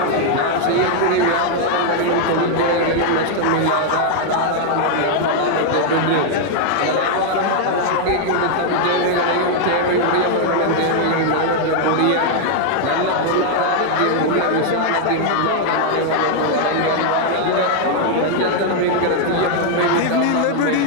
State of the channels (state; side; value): different; both; correlation 0.00